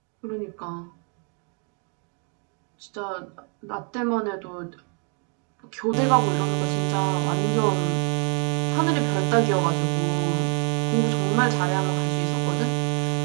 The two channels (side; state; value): left; quieter; 38.4 dB